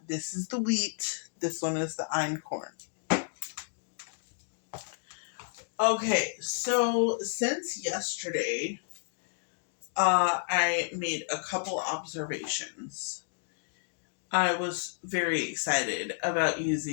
This is the wheat. This one is the einkorn. Okay, so since yesterday, I made a couple observations. I was very excited about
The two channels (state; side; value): silent; right; digital silence